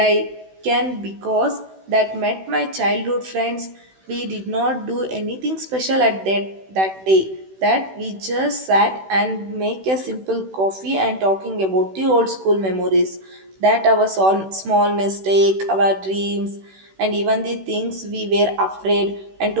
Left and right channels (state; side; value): late; left; 16 ms